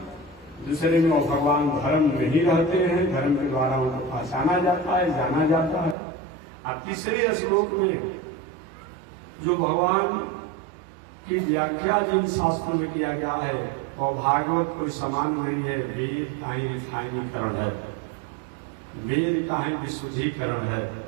दूसरे में वो भगवान धर्म में ही रहते हैं, धर्म के द्वारा उनको पहचाना जाता है, जाना जाता है। और तीसरे श्लोक में जो भगवान की व्याख्या जिन शास्त्रों में किया गया है, और भागवत कोई समान नहीं है, वेद का ही रिफाइनीकरण है, वेद का ही विशुद्धीकरण है,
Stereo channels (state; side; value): drops out; left; at 6.0 s